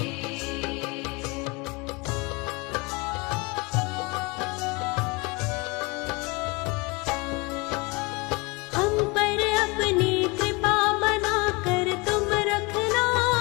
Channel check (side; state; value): right; quieter; 26.4 dB